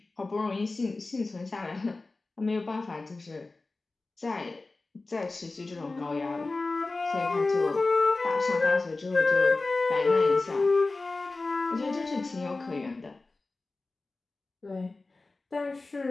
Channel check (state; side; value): quieter; right; 3.4 dB